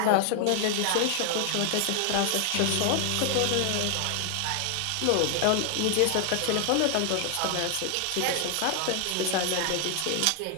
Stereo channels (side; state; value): both; different; correlation 0.00